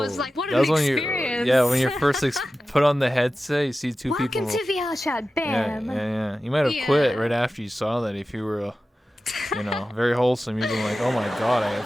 like, what an experience. When you first put on the headset, you see two people. Welcome to VR chat, bam. Yeah. You might have quit right after you saw that if you were, very wholesome. You'd be like, oh my God, I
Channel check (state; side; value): normal; both; correlation 0.94